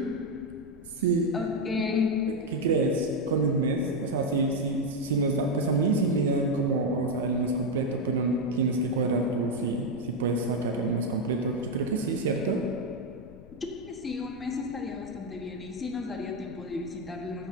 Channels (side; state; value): left; noise; rumble, 19 dB below the sound